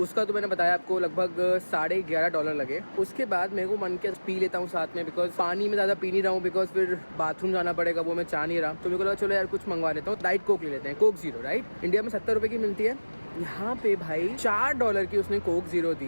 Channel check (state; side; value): inverted; both; correlation -1.00